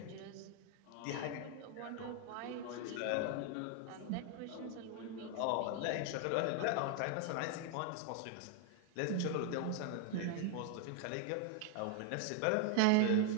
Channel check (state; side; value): different; both; correlation 0.00